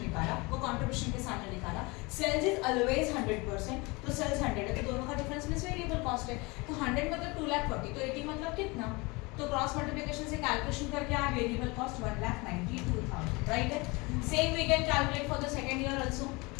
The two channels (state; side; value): quieter; right; 25.8 dB